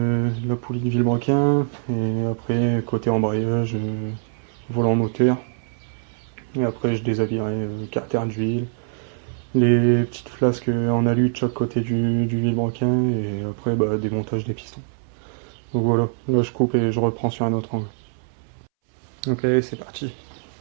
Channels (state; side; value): silent; left; 63 dB below the other